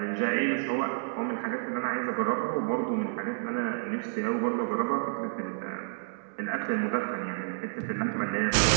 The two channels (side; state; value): left; silent; digital silence